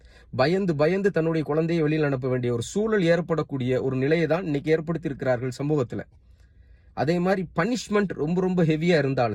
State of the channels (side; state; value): both; identical; correlation 1.00